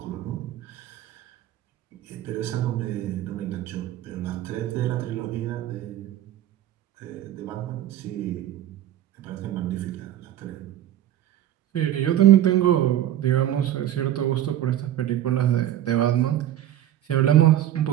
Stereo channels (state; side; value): quieter; left; 12.2 dB